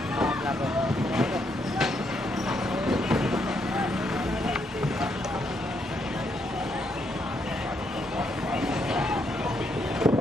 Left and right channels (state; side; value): normal; both; correlation 0.76